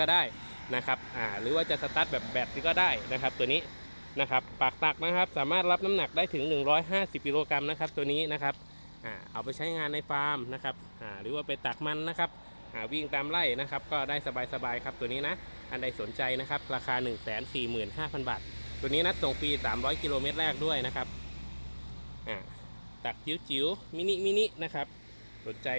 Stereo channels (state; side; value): inverted; both; correlation -1.00